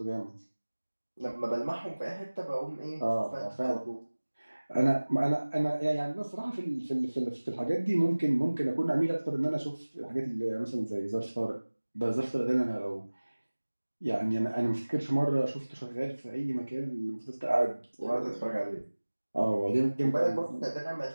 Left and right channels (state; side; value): inverted; both; correlation -1.00